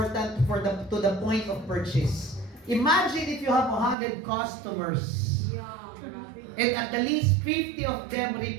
to the point of purchase. Imagine if you have 100 customers and at the least 50 of them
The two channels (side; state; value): left; drops out; at 4.0 s